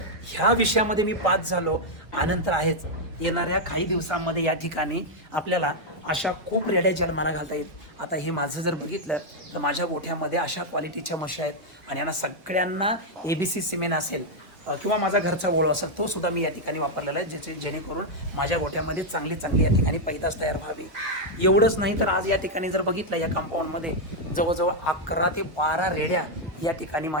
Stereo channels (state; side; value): normal; both; correlation -0.01